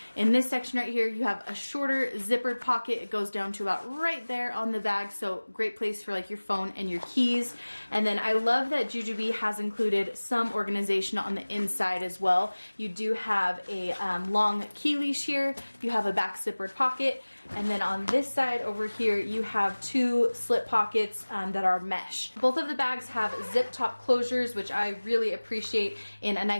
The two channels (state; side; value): inverted; both; correlation -1.00